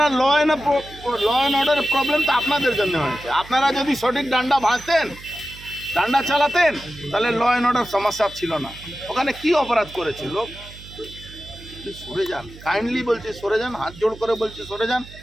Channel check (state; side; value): noise; right; hum, 18 dB below the sound